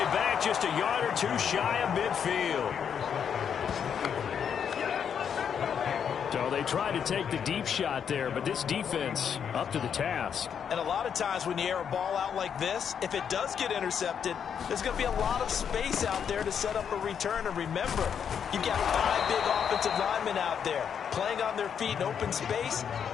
back, just a yard or two shy of midfield. So they tried to take the deep shot there, but this defense up to the task. And a lot of times when you air a ball out like this, if it does get intercepted, there's going to be a lot of space out there to set up a return. And remember, you've got 5 big offensive linemen out there playing on their feet in open space.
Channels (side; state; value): right; quieter; 7.7 dB